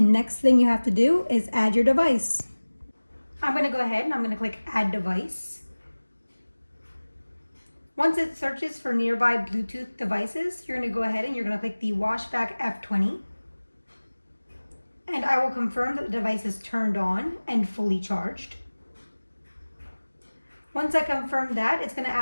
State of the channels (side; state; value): both; inverted; correlation -1.00